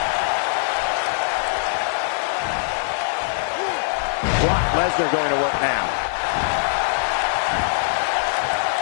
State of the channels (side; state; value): right; silent; digital silence